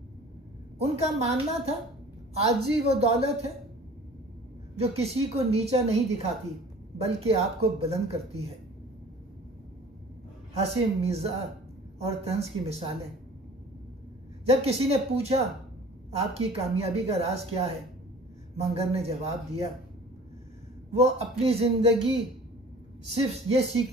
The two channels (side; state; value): both; normal; correlation 0.46